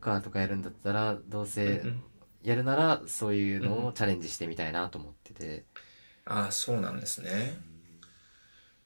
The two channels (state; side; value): inverted; both; correlation -1.00